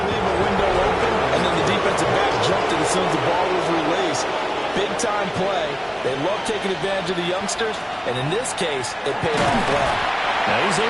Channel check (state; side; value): identical; both; correlation 1.00